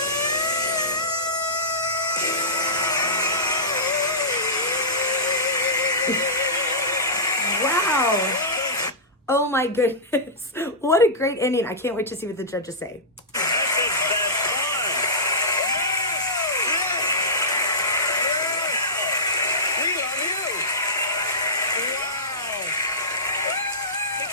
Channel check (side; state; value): both; normal; correlation -0.16